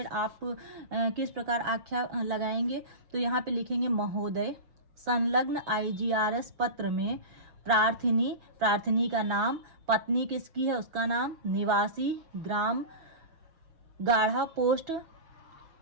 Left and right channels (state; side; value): late; left; 6.1 ms